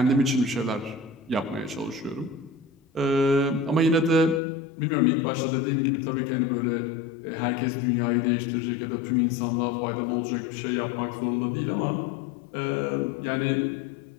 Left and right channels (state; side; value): drops out; right; at 4.4 s